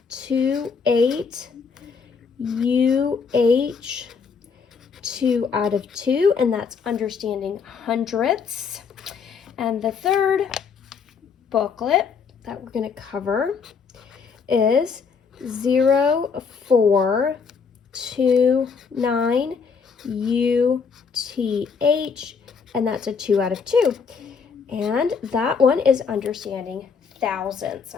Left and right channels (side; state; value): right; quieter; 5.7 dB